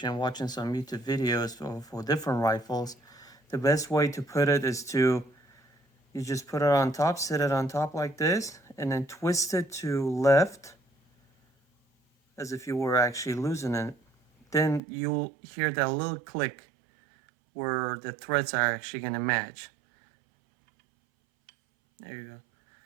and watching some YouTube videos for different rifles, the best way to put it is to, you just put it on top, sit it on top like this, and then twist it to left as if you were actually losing it. Then you'll hear that little click where the threads are actually going to match. There you go.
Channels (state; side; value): drops out; left; at 14.8 s